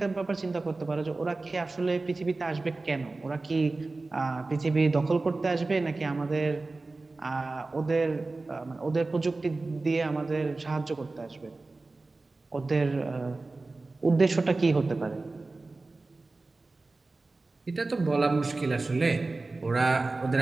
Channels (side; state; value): left; quieter; 3.4 dB